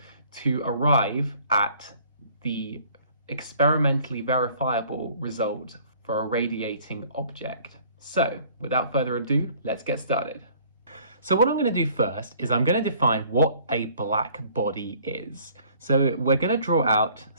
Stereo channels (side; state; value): both; inverted; correlation -0.56